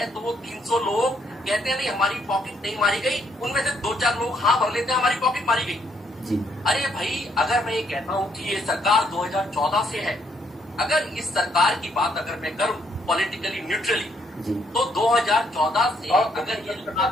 तो वो 300 लोग कहते हैं नहीं हमारी पॉकेट नहीं मारी गई, उनमें से 2-4 लोग हाँ भर लेते हैं हमारी पॉकेट मारी गई जी। अरे भाई, अगर मैं ये कहता हूं कि ये सरकार 2014 से है, अगर इस सरकार की बात अगर मैं करूं पॉलिटिकली न्यूट्रली, तो 2014 से अगर ये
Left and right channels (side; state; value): both; normal; correlation 0.71